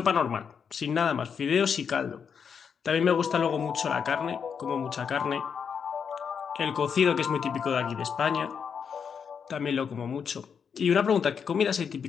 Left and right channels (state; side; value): quieter; right; 6.8 dB